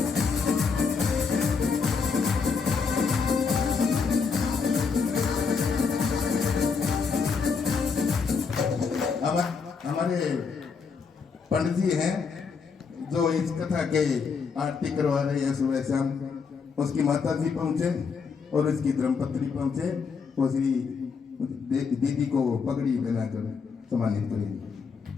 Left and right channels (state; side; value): quieter; right; 5.4 dB